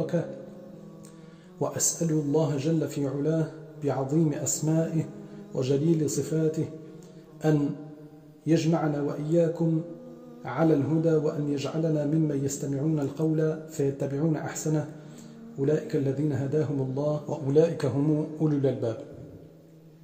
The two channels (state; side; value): identical; both; correlation 1.00